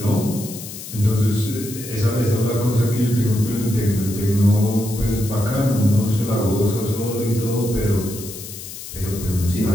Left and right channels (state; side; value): noise; left; hiss, 12 dB below the sound